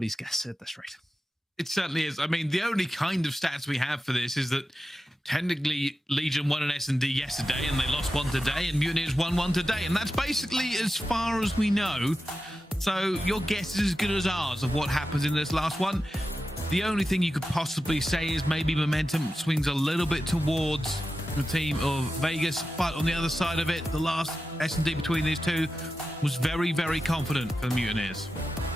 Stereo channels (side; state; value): both; normal; correlation 0.92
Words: guess at this rate. It certainly is. I mean, the only kind of stats we have for this is that technically Legion won an S&D yesterday and they lost one today, and Mutineers won one today, and that's basically as far as we know. So your guess is as good as ours of what happens in this last one. The only thing you could possibly say is maybe momentum swings a little bit towards the team of Vegas, but on the other side of it, the last S&D between these two was very confident for the Mutineers.